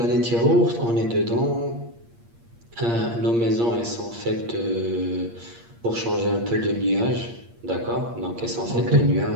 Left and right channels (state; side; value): late; left; 8.6 ms